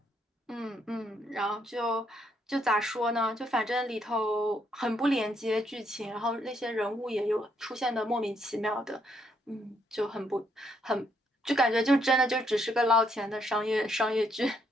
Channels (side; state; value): both; normal; correlation 0.73